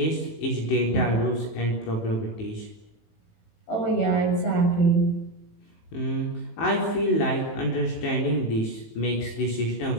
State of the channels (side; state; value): right; late; 19 ms